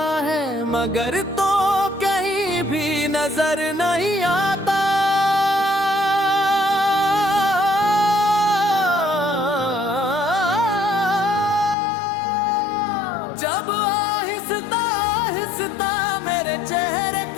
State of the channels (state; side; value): drops out; right; at 11.8 s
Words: है, मगर तो कहीं भी नजर नहीं आता। जब आहिस्ता आहिस्ता मेरे चेहरे